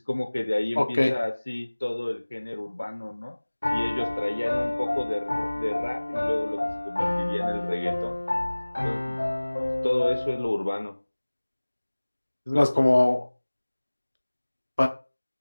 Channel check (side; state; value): both; inverted; correlation -1.00